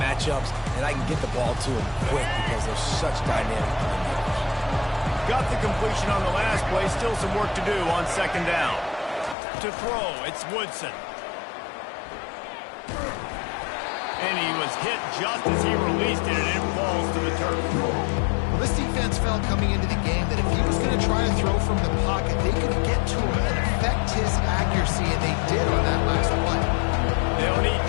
matchups, and I can get the ball to them quick because they're such dynamic playmakers. Got the completion on the last play. Still some work to do on second down. To throw, it's Woodson. And he was hit just as he released it, and it falls to the turf. Well, this defense felt coming into the game that if he was going to try to throw from the pocket, they could get to him and affect his accuracy, and they did on that last play. They'll need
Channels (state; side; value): drops out; right; at 9.3 s